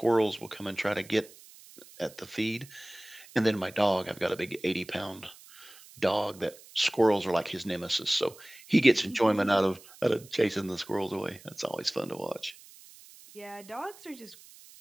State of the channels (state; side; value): noise; right; hiss, 21 dB below the sound